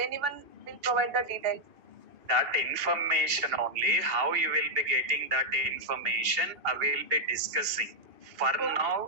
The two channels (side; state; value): left; late; 2.8 ms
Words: anyone will provide the details. That information only, how you will be getting that information, I will be discussing. For